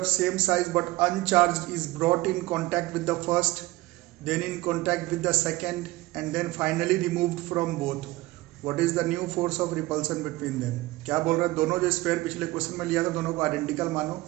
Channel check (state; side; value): quieter; left; 19.3 dB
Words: same size but uncharged is brought in contact with the first, then in contact with the second, and then finally removed from both. What is the new force of repulsion between them. क्या बोल रहा है, दोनों जो sphere पिछले question में लिया था दोनों को आइडेंटिकल मानो,